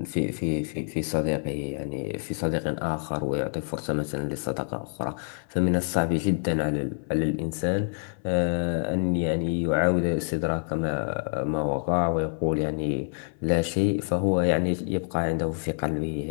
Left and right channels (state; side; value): silent; right; 60 dB below the other